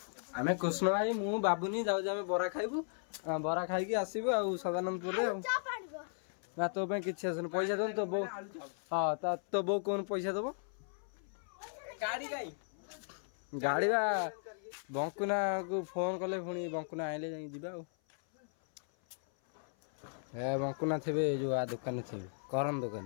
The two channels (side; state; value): right; silent; 54 dB below the other